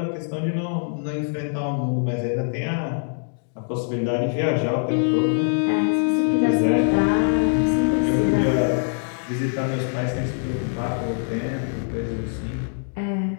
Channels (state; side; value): silent; right; 63 dB below the other